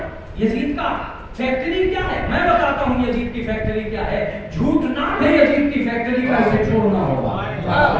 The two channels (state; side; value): identical; both; correlation 1.00